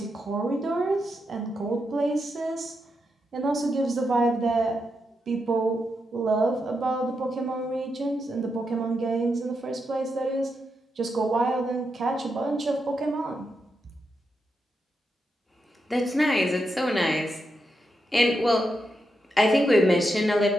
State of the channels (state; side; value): normal; both; correlation 0.84